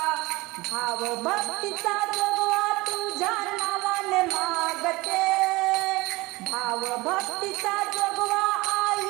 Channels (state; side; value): quieter; left; 21.9 dB